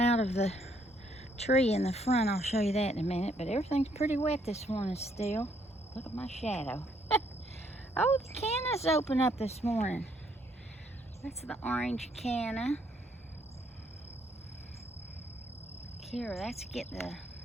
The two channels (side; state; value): both; normal; correlation 0.69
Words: of the tree in the front. I'll show you that in a minute. But everything's pretty wet this morning still. Look at my shadow. Oh, the canna's open up this morning. That's the orange canna. Here, that's getting the